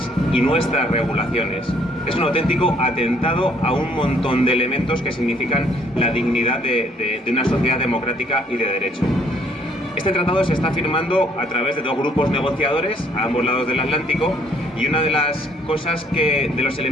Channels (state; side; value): normal; both; correlation 0.63